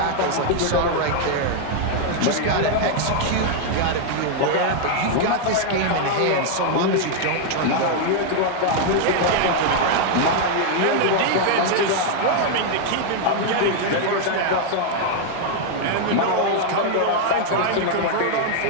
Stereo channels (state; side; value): different; both; correlation 0.00